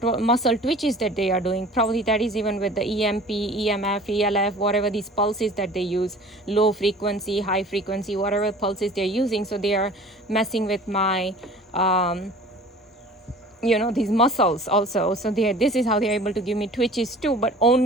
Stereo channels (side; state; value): both; normal; correlation 0.45